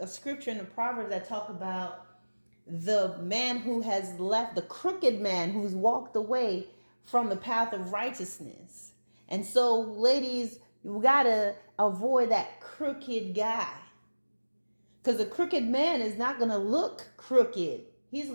scripture in the Proverbs that talk about the man who has left, the crooked man who's walked away from the path of righteousness. And so, ladies, you gotta avoid that crooked guy. Because a crooked man is not gonna look crooked. He's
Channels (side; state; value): both; inverted; correlation -1.00